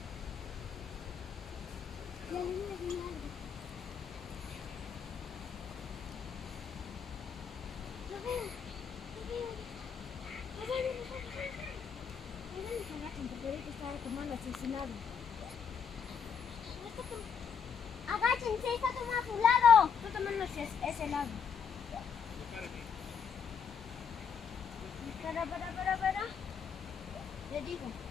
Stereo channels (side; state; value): right; quieter; 6.8 dB